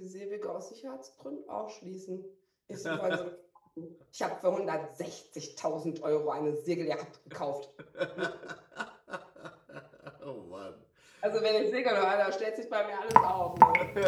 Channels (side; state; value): both; identical; correlation 1.00